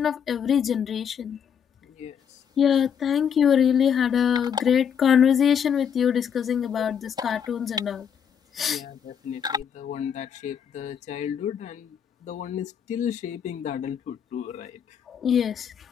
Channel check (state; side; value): quieter; right; 7.9 dB